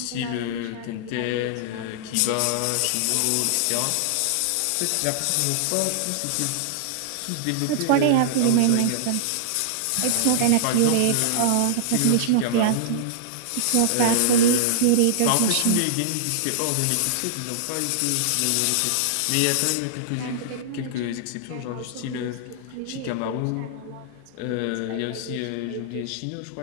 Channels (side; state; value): both; different; correlation -0.01